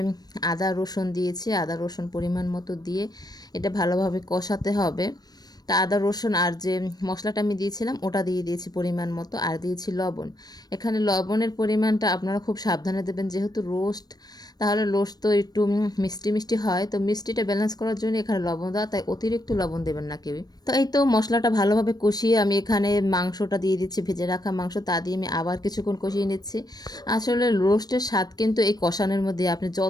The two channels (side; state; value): right; late; 0.19 ms